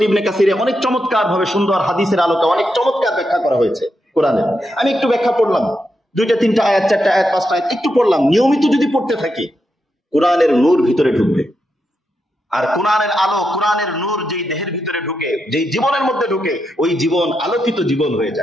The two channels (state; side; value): normal; both; correlation 0.85